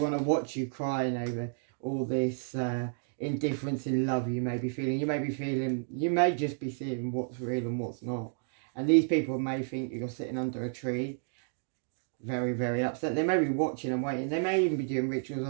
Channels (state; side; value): silent; left; digital silence